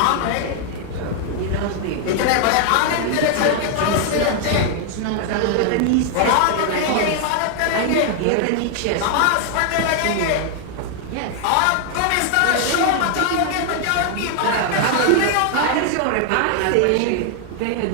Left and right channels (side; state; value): both; different; correlation 0.00